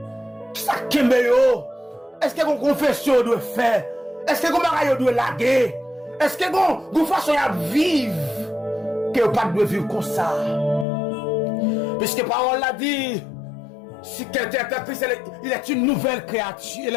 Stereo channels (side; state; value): right; drops out; at 10.9 s